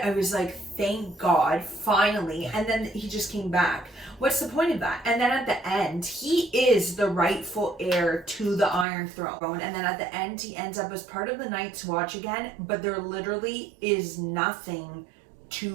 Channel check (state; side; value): drops out; left; at 8.8 s